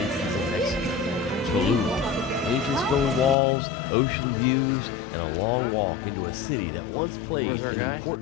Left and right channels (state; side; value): drops out; right; at 3.4 s